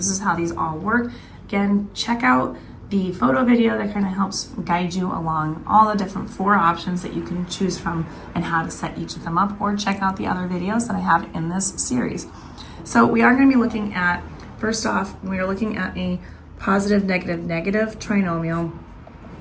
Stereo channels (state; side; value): identical; both; correlation 1.00